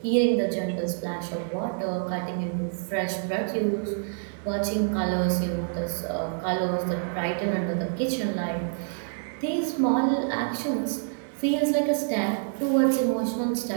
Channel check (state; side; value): silent; left; digital silence